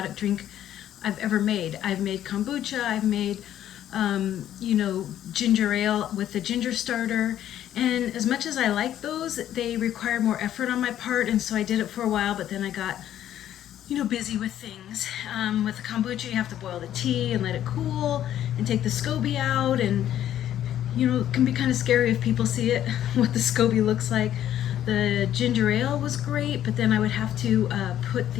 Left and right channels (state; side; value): quieter; right; 11.4 dB